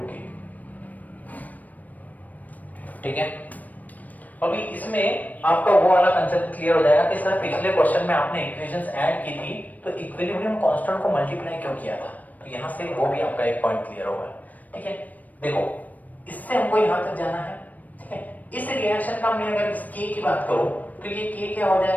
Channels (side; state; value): right; late; 0.077 ms